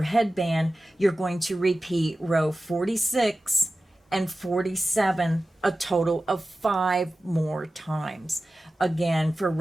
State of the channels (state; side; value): normal; both; correlation 0.95